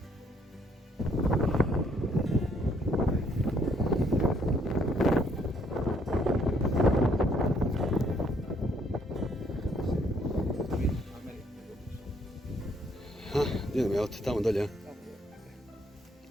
Idemo, jel te tamo dolje?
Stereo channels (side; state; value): both; normal; correlation 0.67